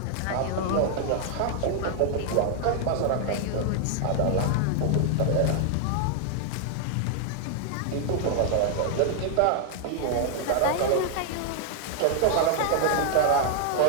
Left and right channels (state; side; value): different; both; correlation 0.00